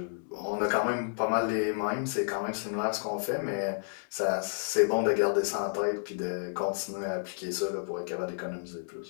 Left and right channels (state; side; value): silent; right; digital silence